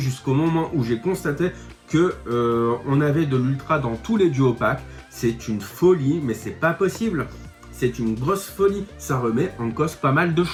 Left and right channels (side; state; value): both; identical; correlation 1.00